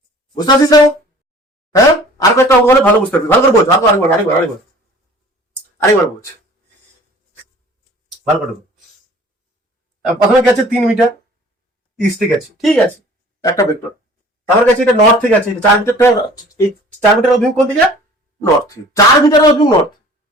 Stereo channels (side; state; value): both; normal; correlation 0.48